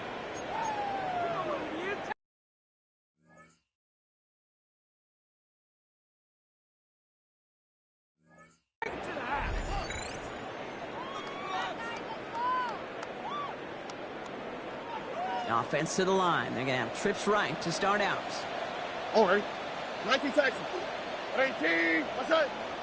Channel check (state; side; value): identical; both; correlation 1.00